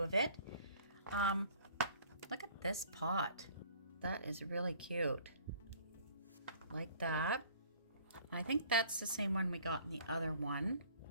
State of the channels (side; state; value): both; inverted; correlation -0.53